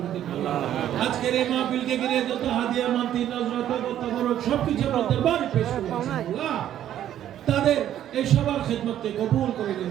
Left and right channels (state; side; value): quieter; left; 11.3 dB